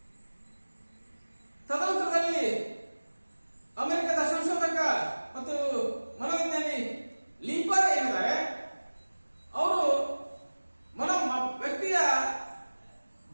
ತದನಂತರದಲ್ಲಿ ಅಮೆರಿಕದ ಸಂಶೋಧಕ ಮತ್ತು ಮನೋವಿಜ್ಞಾನಿ ಲೀಪರ್ ಏನಿದ್ದಾರೆ, ಅವರು ವ್ಯಕ್ತಿಯ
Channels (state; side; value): inverted; both; correlation -1.00